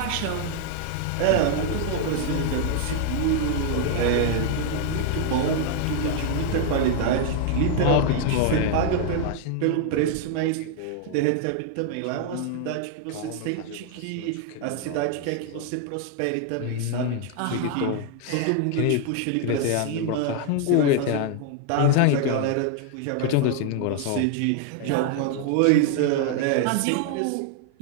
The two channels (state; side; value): different; both; correlation 0.00